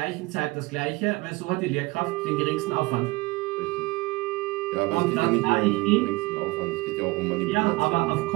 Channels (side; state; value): left; quieter; 22.2 dB